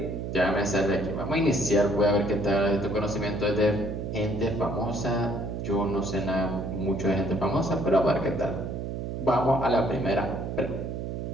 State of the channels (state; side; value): noise; right; hum, 5 dB below the sound